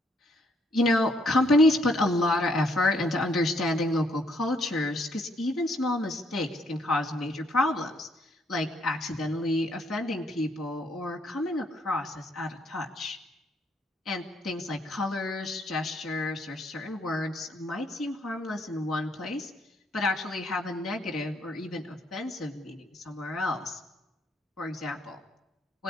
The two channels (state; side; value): normal; both; correlation 0.70